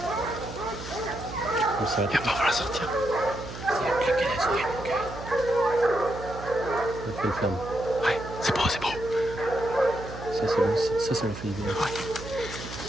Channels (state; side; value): noise; right; hum, 11 dB below the sound